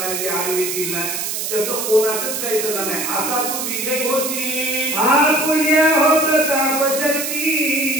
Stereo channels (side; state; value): right; noise; hiss, 3 dB below the sound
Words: जे आडवे येतील ना त्याचं कोणाचंच काही चालणार नाही. असा तू विजय होशील. आपुल्या हो प्रताप शक्ती